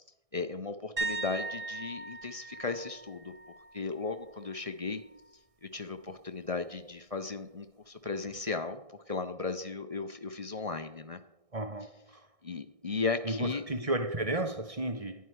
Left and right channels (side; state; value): left; late; 1.6 ms